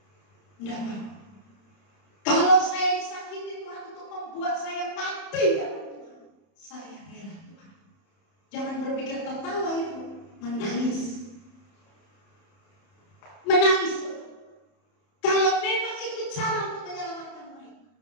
Tidak apa. Kalau saya disakiti Tuhan untuk membuat saya mati dalam Tuhan, saya rela Tuhan. Jangan berpikir tertawa itu, menangis. Menangis. Kalau memang itu cara untuk menyelamatkan mereka.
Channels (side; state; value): right; late; 31 ms